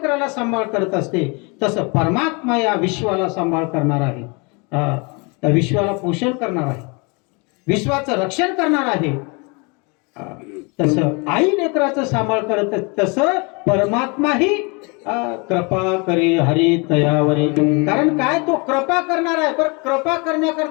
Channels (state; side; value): quieter; right; 30.6 dB